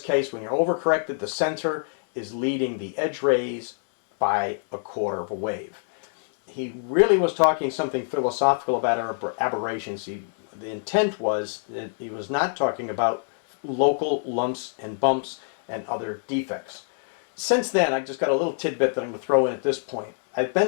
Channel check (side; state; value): right; silent; digital silence